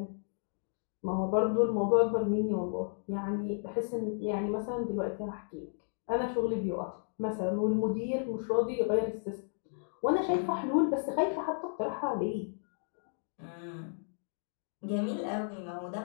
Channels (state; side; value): silent; right; digital silence